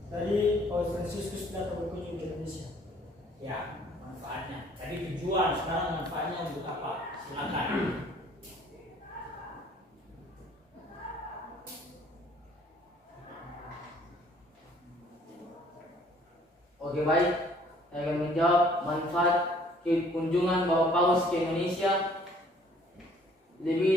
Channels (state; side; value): normal; both; correlation 0.58